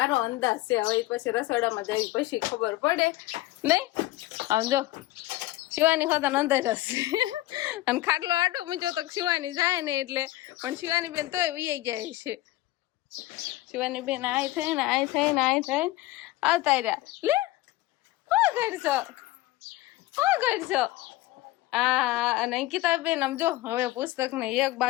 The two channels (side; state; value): right; quieter; 17.1 dB